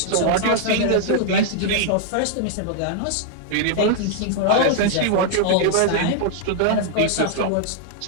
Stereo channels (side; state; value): both; different; correlation 0.00